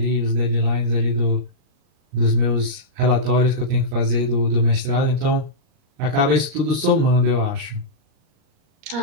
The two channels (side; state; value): left; late; 38 ms